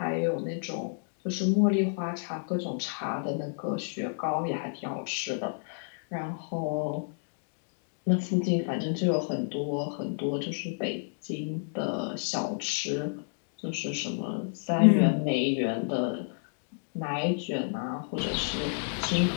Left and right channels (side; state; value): right; silent; digital silence